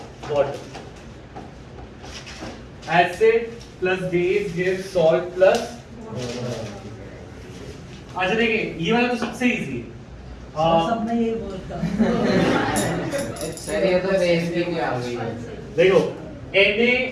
water, acid plus base gives salt plus. अच्छा देखिए ये वाला तो सबसे इजी है। सब में यही बोलता सर ये तो बेस की भी आ गई है देखो Na,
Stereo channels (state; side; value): identical; both; correlation 1.00